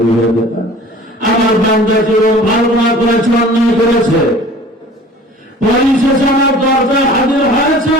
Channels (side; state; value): both; normal; correlation 0.46